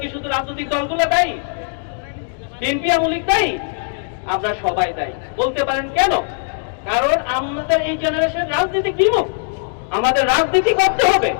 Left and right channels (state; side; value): silent; right; digital silence